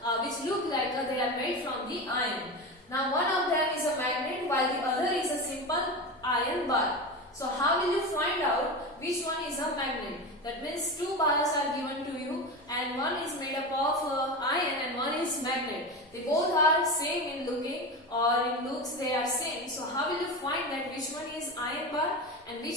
which look like they are made from the iron. Now one of them is a magnet while the other is a simple iron bar. So how will you find out which one is a magnet? That means two bars are given to you and one is made up of iron and one is magnet. They both are same in looking, or in looks they are same. So how will you find that which one is iron bar and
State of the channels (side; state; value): both; normal; correlation 0.23